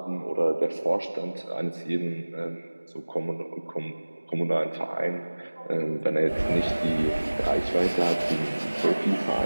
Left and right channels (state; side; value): inverted; both; correlation -1.00